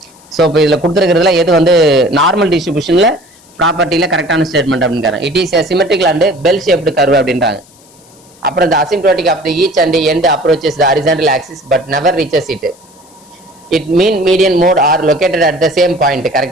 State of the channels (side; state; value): left; noise; hiss, 28 dB below the sound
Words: So இப்போ இதில் கொடுத்துருக்கிறதுல எது வந்து நார்மல் டிஸ்ட்ரிபியூஷனில் ப்ராப்பர்ட்டியில் கரெக்டான ஸ்டேட்மெண்ட் அப்படின்றாங்க. It is symmetrical and bell shaped curve அப்படின்றாங்க. அப்புறம் the asymptotic of the each and end approaches the horizontal axis but never reaches it. It mean median mode are located at the same point.